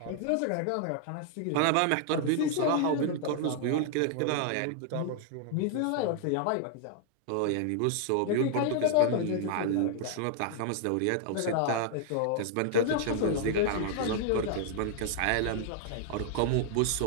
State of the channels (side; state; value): both; different; correlation 0.00